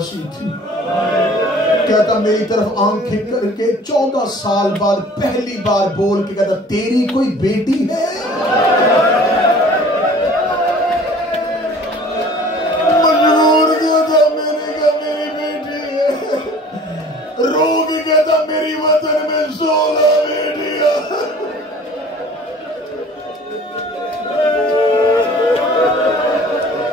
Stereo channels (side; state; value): both; normal; correlation 0.48